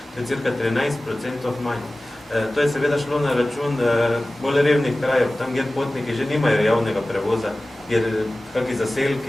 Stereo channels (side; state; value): both; normal; correlation 0.97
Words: To je cirka 13% manj. To je seveda šlo na račun bolj revnih krajev, tam, kjer potniki že nimajo javnega prevoza, kjer kakšni